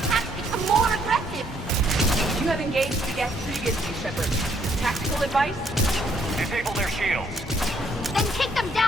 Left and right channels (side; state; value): both; normal; correlation 0.69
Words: become more aggressive! You have engaged the Geth previously, Shepard. Tactical advice? Disable their shields. Then kick them